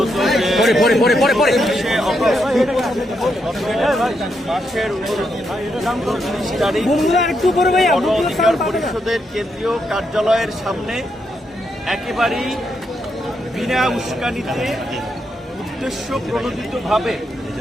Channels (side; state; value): both; normal; correlation 0.80